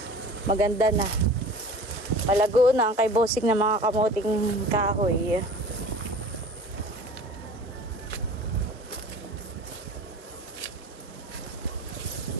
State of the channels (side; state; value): both; normal; correlation 0.42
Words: Maganda na. Palago na ang kay Bossing na mga kamuting kahoy.